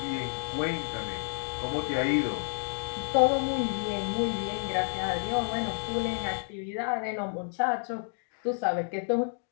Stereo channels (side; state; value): right; silent; digital silence